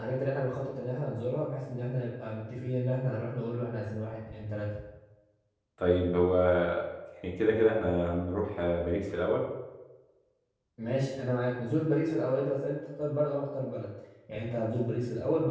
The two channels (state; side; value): identical; both; correlation 1.00